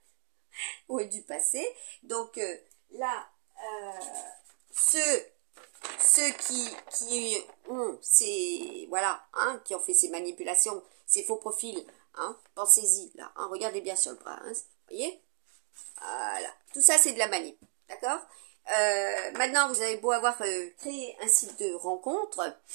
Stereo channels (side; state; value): left; silent; 57 dB below the other